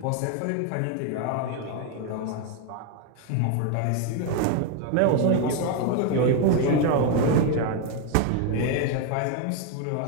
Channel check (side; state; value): both; different; correlation 0.01